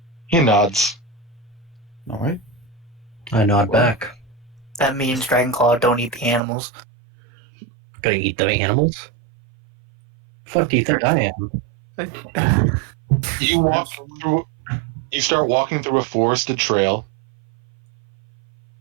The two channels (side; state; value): left; drops out; at 6.4 s